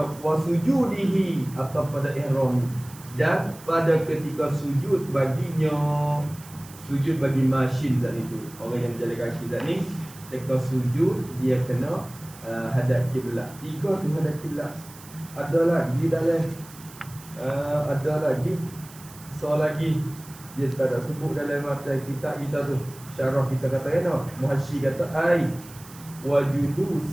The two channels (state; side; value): noise; right; hiss, 19 dB below the sound